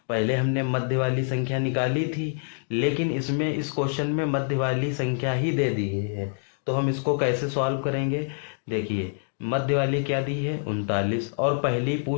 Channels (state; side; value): silent; right; 61 dB below the other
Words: पहले हमने मध्य वाली संख्या निकाली थी, लेकिन इसमें इस क्वेश्चन में मध्य वाली संख्या ही दे दी है। तो हम इसको कैसे सॉल्व करेंगे, देखिए मध्य वाली क्या दी है, 39, और पहली